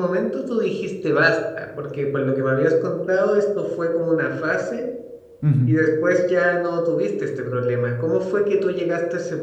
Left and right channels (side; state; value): both; identical; correlation 1.00